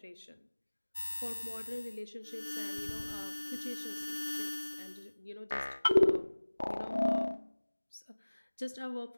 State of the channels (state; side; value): inverted; both; correlation -1.00